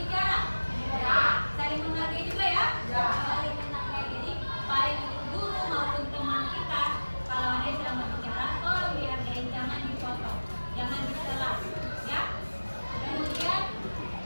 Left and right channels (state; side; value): inverted; both; correlation -1.00